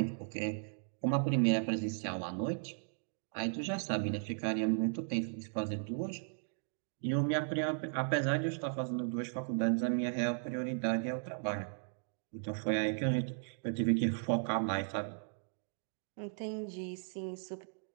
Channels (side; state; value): left; silent; digital silence